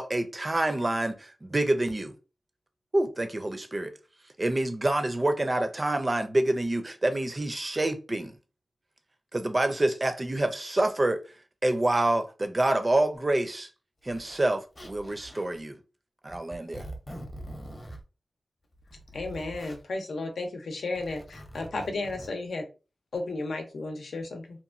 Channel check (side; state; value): both; normal; correlation 0.97